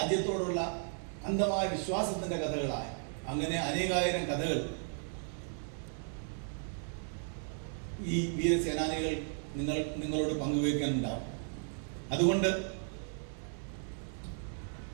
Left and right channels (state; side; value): silent; left; 54 dB below the other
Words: അന്ധമായ വിശ്വാസത്തിന്റെ കഥകളായ അങ്ങനെ അനേകായിരം കഥകൾ ഈ വീരസേനാനികൾ നിങ്ങളോട് പങ്കുവയ്ക്കാനുണ്ടാവും. അതുകൊണ്ട്